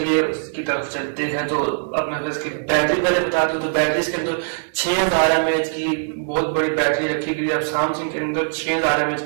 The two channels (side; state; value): left; silent; digital silence